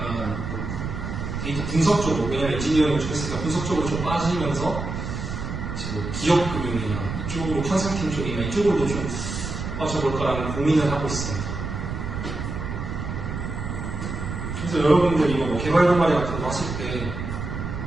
데이터 분석 쪽으로, 왜냐면 엔지니어링을 좀 했으니까 분석 쪽으로 좀 빠지면서 이제 뭐 기업 금융이나 이쪽으로 컨설팅 쪽이나 이쪽으로도 좀 빠져볼까라는 고민을 하고 있습니다. 그래서 여러분들 이거 뭐 개발 동아리 같은 거 하실 때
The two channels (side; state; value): right; noise; rumble, 5 dB below the sound